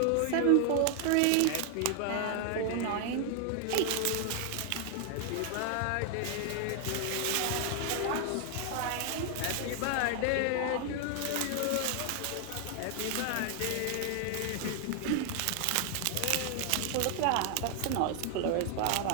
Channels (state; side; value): different; both; correlation 0.00